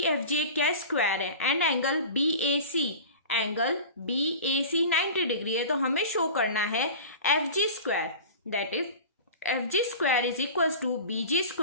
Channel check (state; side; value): inverted; both; correlation -0.35